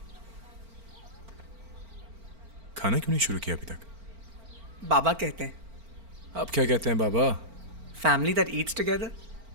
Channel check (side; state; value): left; late; 4.4 ms